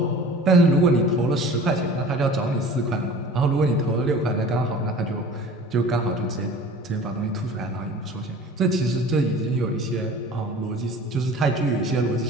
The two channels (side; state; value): both; normal; correlation 0.43